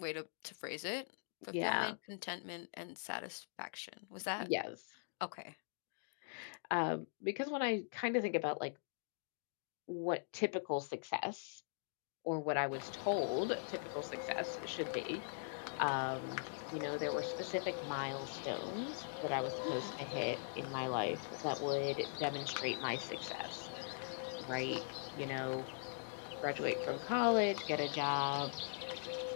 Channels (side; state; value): right; silent; digital silence